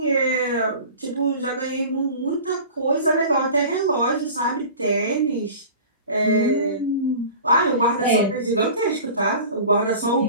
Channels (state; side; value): inverted; both; correlation -0.40